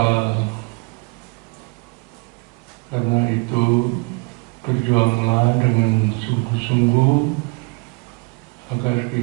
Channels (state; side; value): quieter; left; 29.3 dB